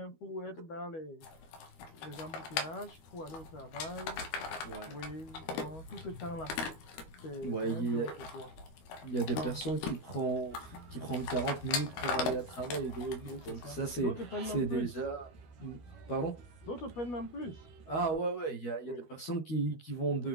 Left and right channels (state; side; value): late; right; 12 ms